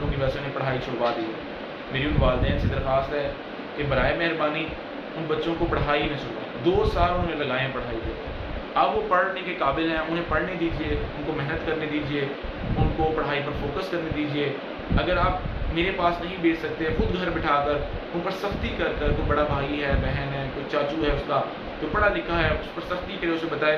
کی وجہ سے انہیں پڑھائی چھڑوا دی، میری ان والدین سے درخواست ہے کہ برائے مہربانی ان بچوں کو پڑھائی نہ چھڑوائیں۔ 2 سال انہوں نے لگائے ہیں پڑھائی پہ، اب وہ پڑھنے کے قابل ہیں، انہیں پڑھنے دیجیے، ان کو محنت کرنے دیجیے، ان کو پڑھائی پر فوکس کرنے دیجیے۔ اگر آپ میرے پاس نہیں بھیج سکتے، خود گھر بٹھا کر ان پر سختی کر کر، کوئی بڑا بھائی ہے، بہن ہے، کوئی چاچو ہے اس کا جو پڑھا لکھا ہے، اس پر سختی کرے، اسے بتائے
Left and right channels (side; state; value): both; identical; correlation 1.00